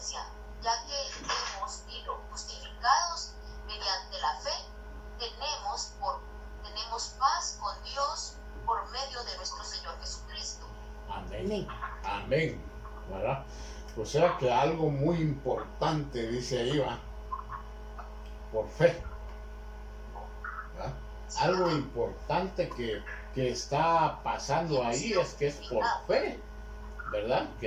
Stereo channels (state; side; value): identical; both; correlation 1.00